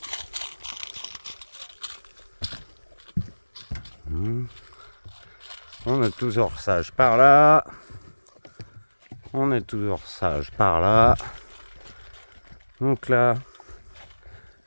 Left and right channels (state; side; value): inverted; both; correlation -1.00